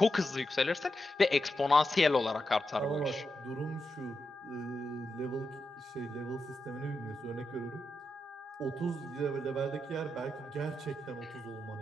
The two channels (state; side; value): normal; both; correlation 0.87